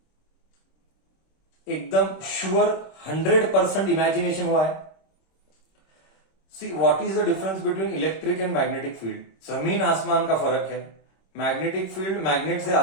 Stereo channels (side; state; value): right; late; 26 ms